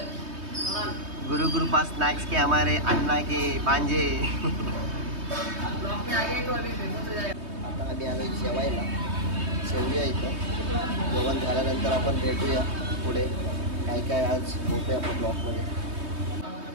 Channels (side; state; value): left; late; 3.2 ms